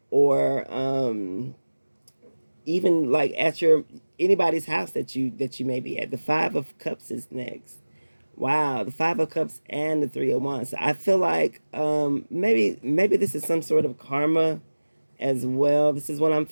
or even like at your anybody's house that you may be at. The 5 of Cups is next. Wow, the 5 of Cups and the 3 of Wands. So I feel like maybe this is some sort of karma as well. This is what I'm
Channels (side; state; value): both; inverted; correlation -1.00